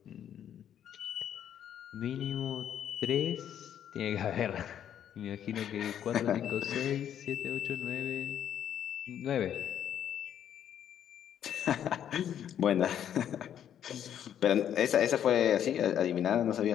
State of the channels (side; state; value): right; quieter; 9.8 dB